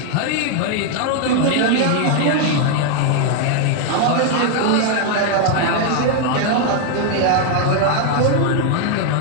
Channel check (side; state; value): both; different; correlation 0.00